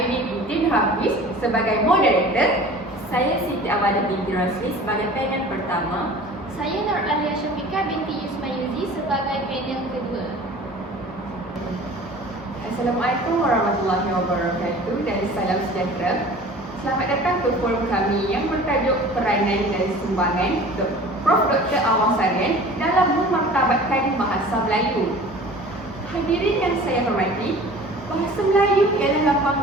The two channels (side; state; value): both; normal; correlation 0.43